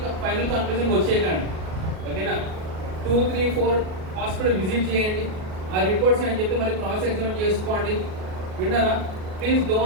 ఫైనల్ కన్క్లూజన్ వచ్చేయకండి. ఓకేనా? 2, 3, 4 హాస్పిటల్ విజిట్ చేయండి. ఆ రిపోర్ట్స్ అని చెప్పి మళ్ళీ క్రాస్ ఎగ్జామిన్ చేసుకోండి. విన్నారా? Please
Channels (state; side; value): late; left; 38 ms